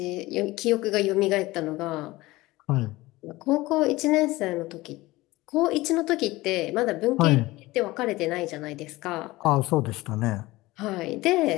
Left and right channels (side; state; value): right; quieter; 19.5 dB